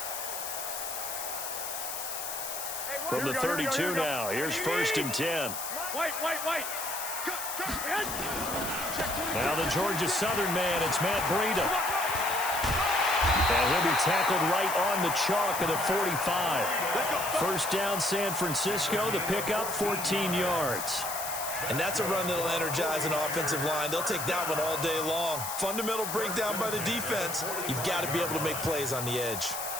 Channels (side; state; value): left; noise; hiss, 5 dB below the sound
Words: From the 32 now, here's first and 10. Wait. Now the Georgia Southern man, it's Matt Breida. And he'll be tackled right on the chalk of the 45. First down, San Francisco. The pickup, 14 yards. And that's a run that'll energize an offensive line. They'll take that one all day long. Fundamental breakdown by the defense. You've got to be able to make plays on the edge.